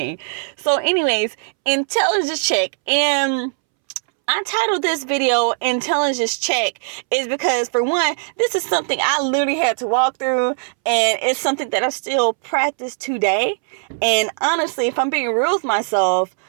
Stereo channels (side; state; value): left; silent; 66 dB below the other